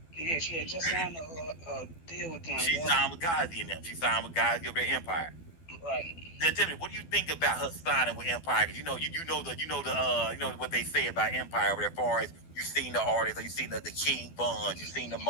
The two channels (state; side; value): late; right; 12 ms